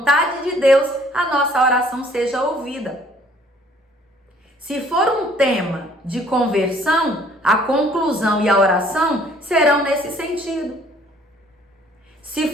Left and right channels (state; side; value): normal; both; correlation 0.59